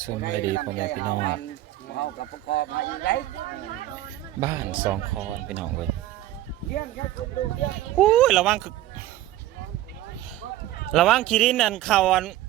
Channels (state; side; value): quieter; left; 14.4 dB